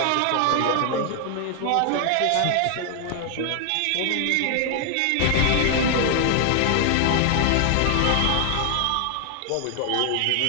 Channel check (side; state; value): both; different; correlation 0.00